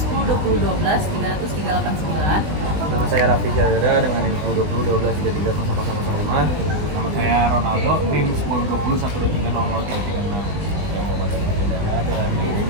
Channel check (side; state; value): left; late; 20 ms